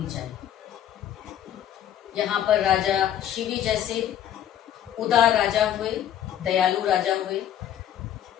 चाहिए। यहाँ पर राजा शिवी जैसे उदार राजा हुए, दयालु राजा हुए,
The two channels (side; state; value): right; quieter; 10.6 dB